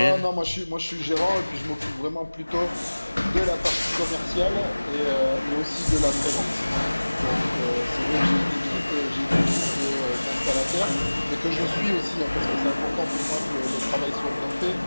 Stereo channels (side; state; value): both; inverted; correlation -1.00